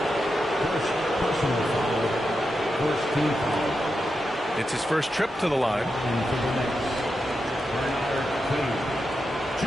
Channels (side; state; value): both; normal; correlation 0.87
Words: It's his first trip to the line.